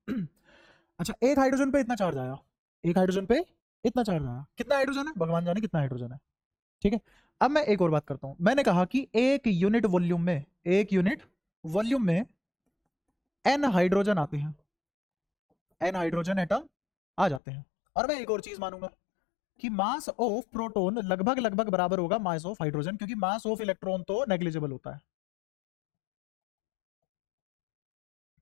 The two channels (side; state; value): right; drops out; at 17.4 s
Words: अच्छा, एक हाइड्रोजन पे इतना चार्ज आया, एक हाइड्रोजन पे इतना चार्ज आया, कितना हाइड्रोजन है भगवान जाने कितना हाइड्रोजन है। ठीक है, अब मैं एक और बात करता हूं। मैंने कहा कि एक यूनिट वॉल्यूम में, एक यूनिट वॉल्यूम में एन हाइड्रोजन आते हैं, एन हाइड्रोजन एटम आ जाते हैं। और मैं एक और चीज मानूंगा कि मास ऑफ प्रोटॉन लगभग लगभग बराबर होगा मास ऑफ हाइड्रोजन, क्योंकि मास ऑफ इलेक्ट्रॉन तो नेग्लिजिबल होता है।